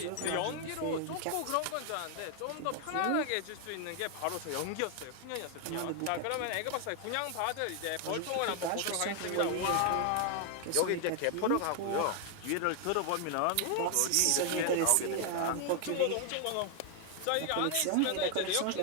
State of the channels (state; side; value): different; both; correlation 0.00